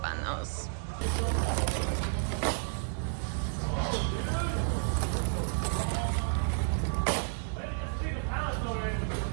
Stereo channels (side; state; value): left; silent; digital silence